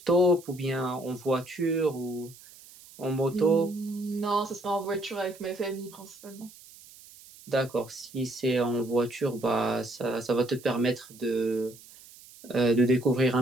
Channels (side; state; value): right; noise; hiss, 21 dB below the sound